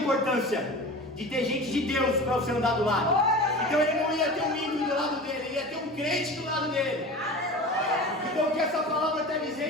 de ter gente de Deus para você andar do lado. Então ele não ia ter um ímpio do lado dele, ele ia ter um crente do lado dele. Então o que essa palavra está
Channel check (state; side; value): normal; both; correlation 0.34